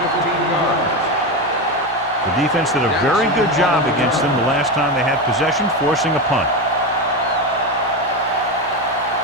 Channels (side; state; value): both; normal; correlation 0.16